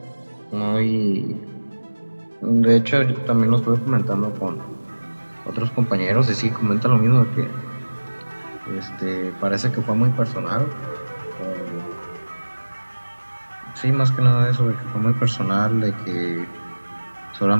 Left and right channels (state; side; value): inverted; both; correlation -1.00